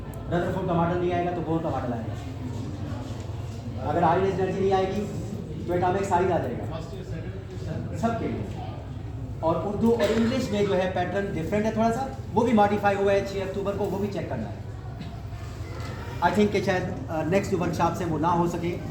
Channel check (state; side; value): identical; both; correlation 1.00